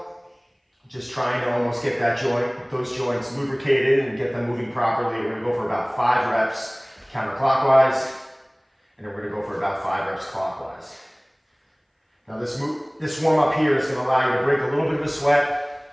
Just trying to almost get that those joints lubricated and get them moving properly. We're gonna go for about 5 reps counterclockwise, and then we're gonna go for about 5 reps clockwise. Now this warm up here is gonna allow you to break a little bit of a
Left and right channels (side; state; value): both; identical; correlation 1.00